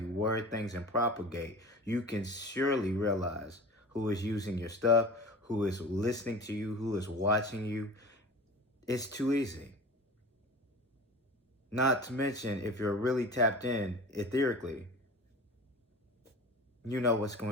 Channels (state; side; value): normal; both; correlation 0.36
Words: word things and propagate, you can surely realize who is using your stuff, who is listening to you, who is watching you. It's too easy. Not to mention, if you're really tapped in etherically, you know what's